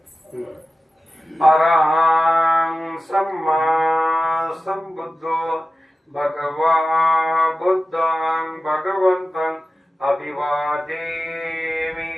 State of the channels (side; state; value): both; normal; correlation 0.94